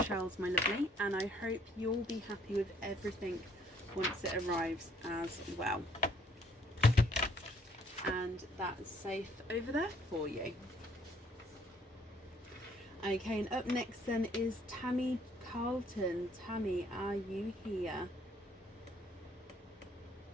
shells, my lovely, and I hope you'll be happy with everything once it arrives as well. And that's safe over there for you. Okay, and up next then is Tammy Carlton. Tammy, are you here?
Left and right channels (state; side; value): normal; both; correlation 0.64